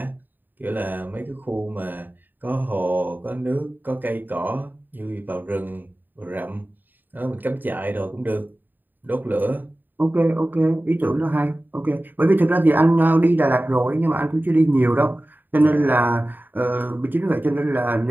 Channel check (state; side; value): late; left; 0.090 ms